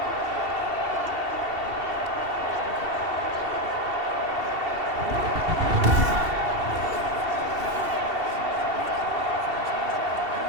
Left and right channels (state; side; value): late; left; 2.7 ms